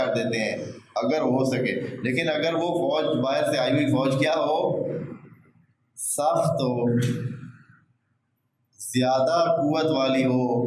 دیتے ہیں اگر ہو سکے، لیکن اگر وہ فوج باہر سے آئی ہوئی فوج کیا ہو، سخت ہو، زیادہ قوت والی ہو،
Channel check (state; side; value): identical; both; correlation 1.00